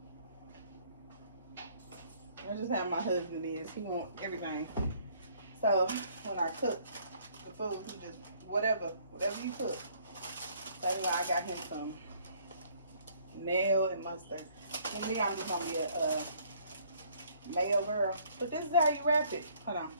I just have my husband is. He wants everything. So when I cook the food, he just whatever you cook. So anyway, I got him some mayo and mustard. And me, I'm just gonna be a mayo girl. But this is how you wrap it. Hold on.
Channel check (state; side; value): inverted; both; correlation -0.61